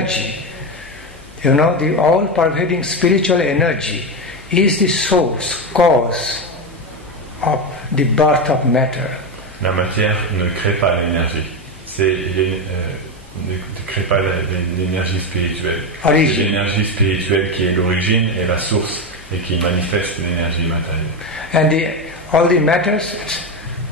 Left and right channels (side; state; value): left; noise; hum, 23 dB below the sound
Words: the all-pervading spiritual energy is the source, cause of the birth of matter. La matière ne crée pas l'énergie. Ne crée pas l'énergie spirituelle. C'est l'énergie spirituelle qui est l'origine et la source et qui manifeste l'énergie matérielle. And all the matters,